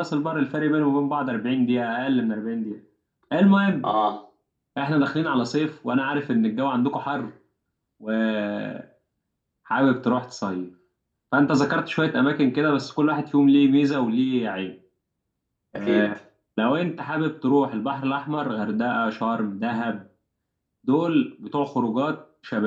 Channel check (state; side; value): identical; both; correlation 1.00